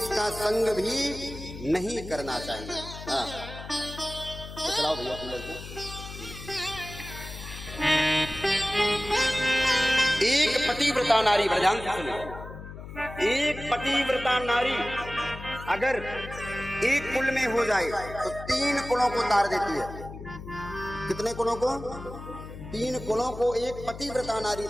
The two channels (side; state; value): left; noise; hum, 12 dB below the sound